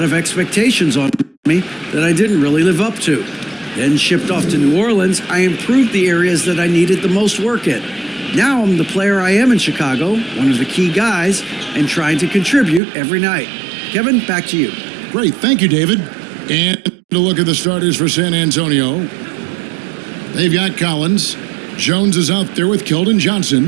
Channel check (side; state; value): left; drops out; at 12.8 s